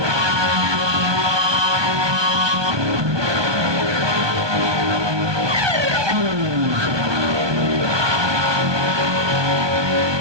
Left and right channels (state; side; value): late; left; 1.2 ms